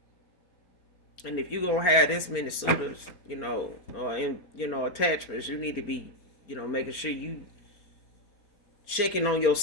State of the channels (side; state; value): right; late; 4.3 ms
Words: And if you're gonna have this many suitors, or in, attachments, you need to be, making sure you checking on